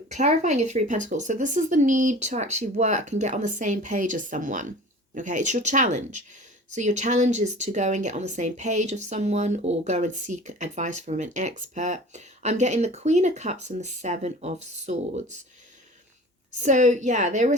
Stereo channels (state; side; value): normal; both; correlation 0.41